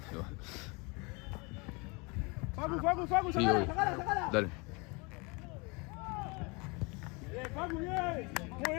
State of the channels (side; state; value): right; quieter; 29.0 dB